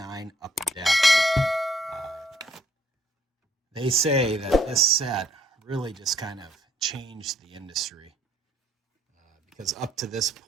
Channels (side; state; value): both; normal; correlation 0.65